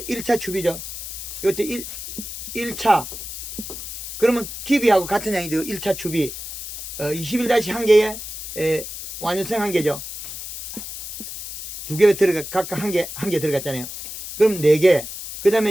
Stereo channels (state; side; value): noise; left; hiss, 9 dB below the sound